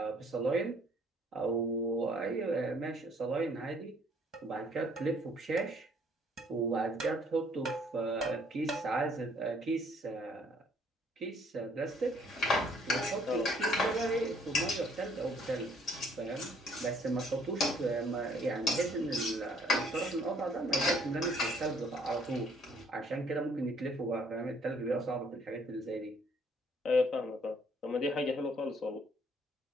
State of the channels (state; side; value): normal; both; correlation 0.62